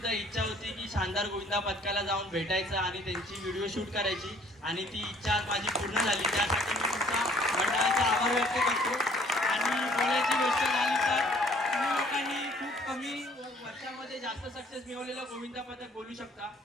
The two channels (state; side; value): normal; both; correlation 0.58